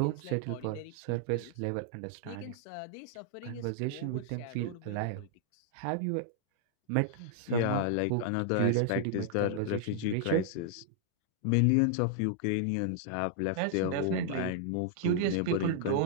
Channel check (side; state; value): both; different; correlation -0.01